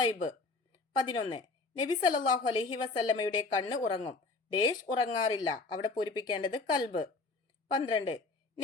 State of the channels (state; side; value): quieter; right; 3.7 dB